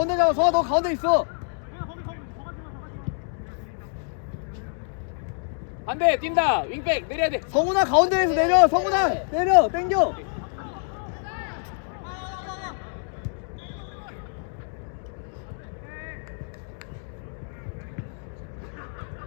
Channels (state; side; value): silent; right; 60 dB below the other